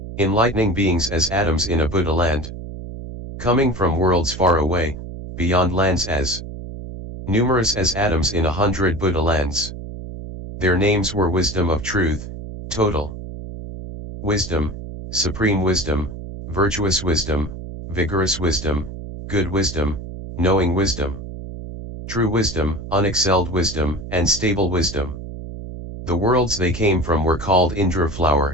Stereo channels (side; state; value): right; noise; hum, 10 dB below the sound